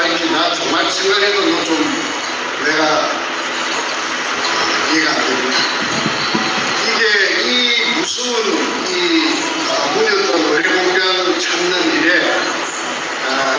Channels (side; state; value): both; identical; correlation 1.00